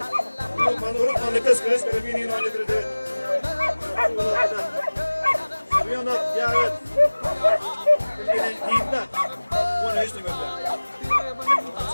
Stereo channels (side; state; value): both; inverted; correlation -1.00